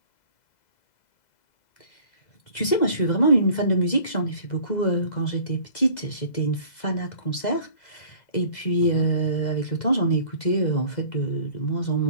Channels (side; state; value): right; late; 2.0 ms